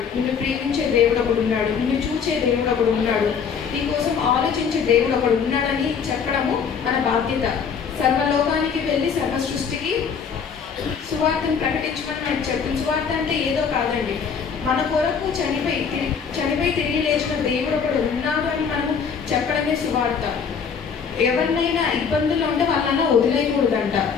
నిన్ను ప్రేమించే దేవుడు ఒకడు ఉన్నాడు, నిన్ను చూచే దేవుడు ఒకడు ఉన్నాడు, నీ కోసం ఆలోచించే దేవుడు ఒకడు ఉన్నాడని చెప్పడము మన బాధ్యత. సర్వలోకానికి వెళ్ళి సర్వ సృష్టికి సువార్తను ప్రకటించమని మనకు చెప్తుంది. సువార్త అంటే ఏదో కాదండి, మన కొరకు చనిపోయి తిరిగి లేచిన దేవుడు ఒకడు ఉన్నాడు అని మనము చెప్పడమే సువార్త. ఎవరినైనా ఇబ్బందులు ఉంటే వాళ్ళని వదిలేయకూడదంట,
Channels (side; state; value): right; quieter; 6.5 dB